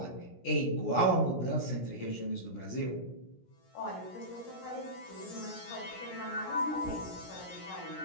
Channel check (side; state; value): right; late; 17 ms